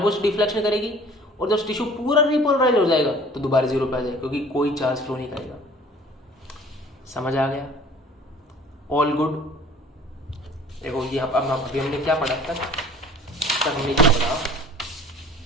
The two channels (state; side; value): normal; both; correlation 0.50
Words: डिफ्लेक्शन करेगी, और जब टिश्यू पूरा रीपोलराइज हो जाएगा तो दोबारा जीरो पे आ जाएगा, क्योंकि कोई चार्ज फ्लो नहीं करेगा। समझ आ गया? All good. देखो ये अब अभी हमने क्या पढ़ा तक हमने क्या पढ़ा,